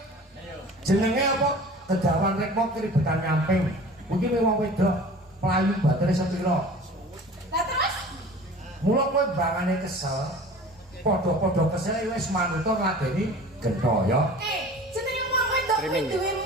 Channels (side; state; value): both; normal; correlation 0.42